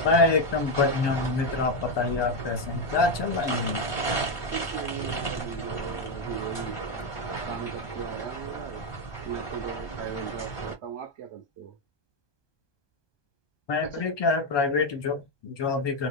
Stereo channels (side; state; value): right; late; 1.2 ms